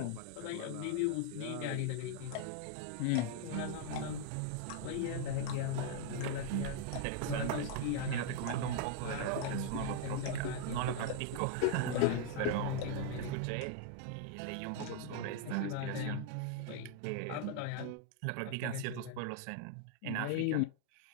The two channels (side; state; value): both; different; correlation -0.01